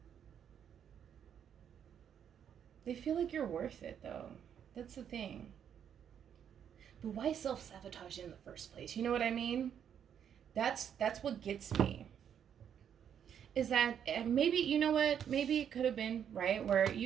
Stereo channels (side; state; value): left; quieter; 8.7 dB